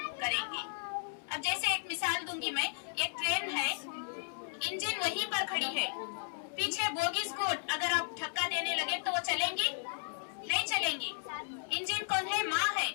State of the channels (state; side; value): silent; right; 55 dB below the other